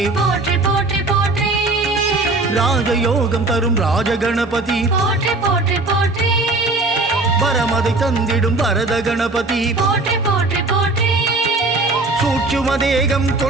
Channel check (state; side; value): quieter; left; 3.1 dB